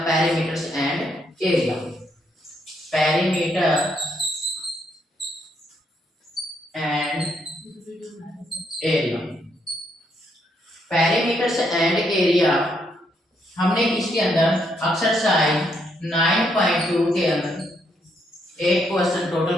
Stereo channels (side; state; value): both; normal; correlation 0.75